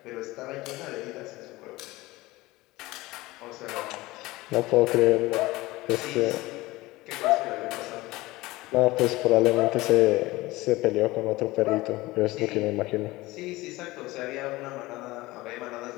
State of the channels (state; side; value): quieter; right; 19.8 dB